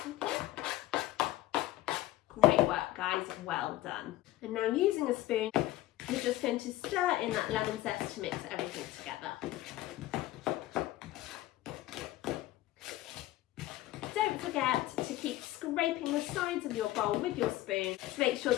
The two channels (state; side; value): quieter; right; 15.9 dB